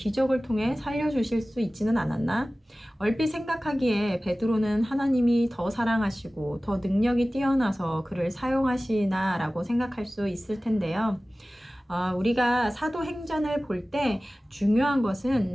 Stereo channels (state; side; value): normal; both; correlation 0.97